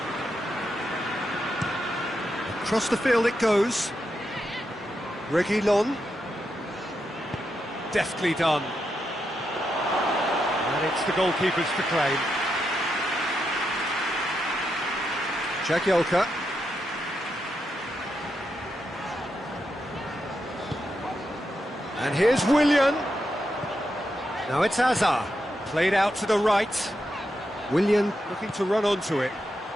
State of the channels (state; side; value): normal; both; correlation 0.84